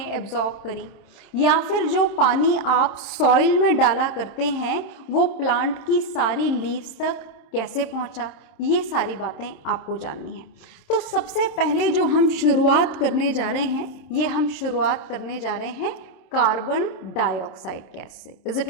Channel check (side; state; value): right; late; 27 ms